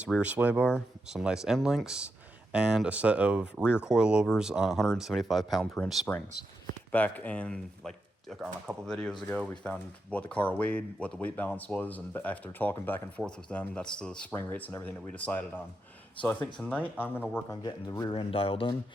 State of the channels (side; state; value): both; normal; correlation 0.86